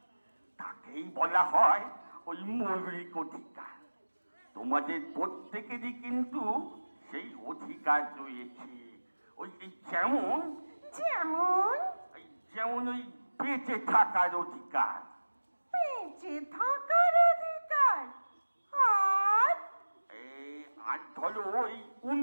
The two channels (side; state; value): both; inverted; correlation -1.00